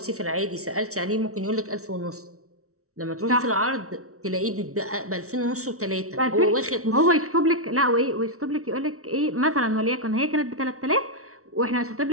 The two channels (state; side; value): late; left; 0.64 ms